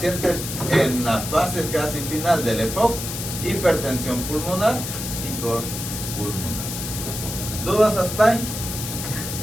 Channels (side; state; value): left; noise; hiss, 6 dB below the sound